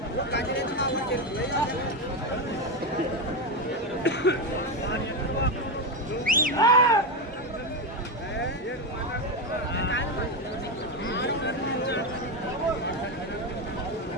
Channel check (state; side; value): normal; both; correlation 0.11